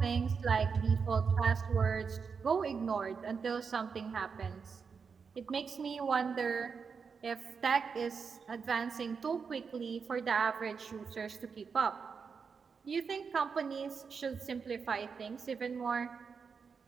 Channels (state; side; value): quieter; left; 5.7 dB